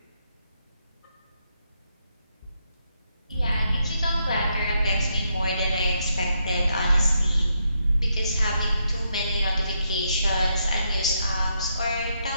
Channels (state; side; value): inverted; both; correlation -0.79